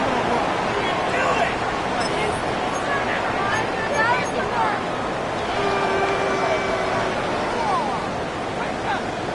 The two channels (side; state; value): both; identical; correlation 1.00